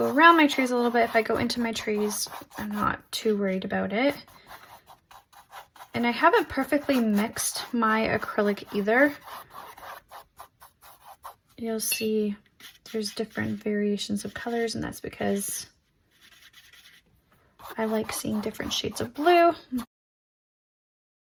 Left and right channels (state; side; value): identical; both; correlation 1.00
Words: around my trees a little bit. If I go into my trees, I'm not too worried about it. And I haven't perfectly mixed my acrylic either. You'll see there's different variations of colors, and that's because I like seeing different shades of blue.